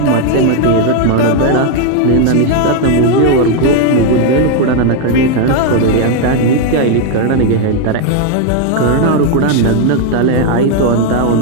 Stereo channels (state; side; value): different; both; correlation 0.01